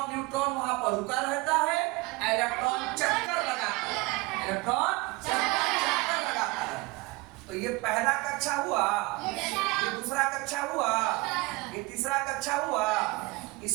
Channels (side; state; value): left; quieter; 23.6 dB